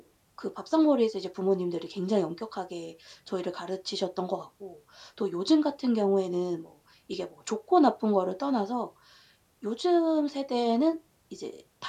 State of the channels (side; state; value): both; identical; correlation 1.00